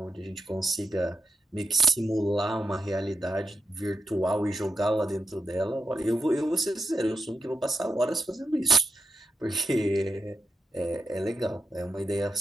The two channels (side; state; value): both; normal; correlation 0.86